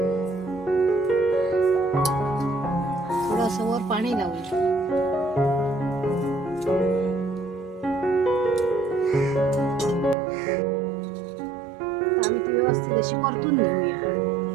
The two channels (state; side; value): drops out; left; at 10.2 s